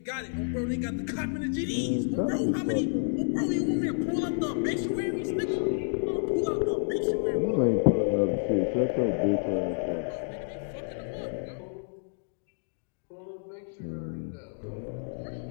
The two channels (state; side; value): silent; right; digital silence